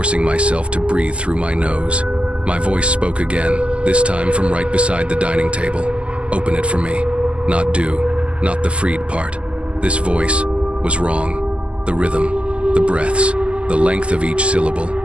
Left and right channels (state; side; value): late; left; 0.056 ms